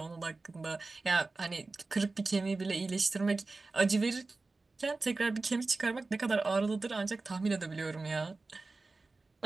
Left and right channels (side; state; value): left; quieter; 3.6 dB